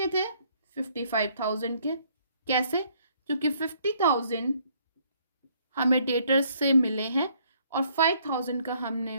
थे 55,000 के, कैसे, क्योंकि 50,000 हमें डेटर्स से मिले हैं और 5,000 का हमने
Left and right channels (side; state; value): both; inverted; correlation -0.65